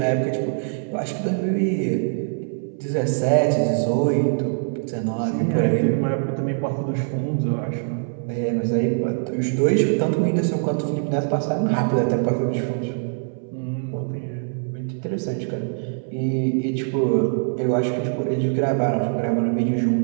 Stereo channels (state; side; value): silent; left; 63 dB below the other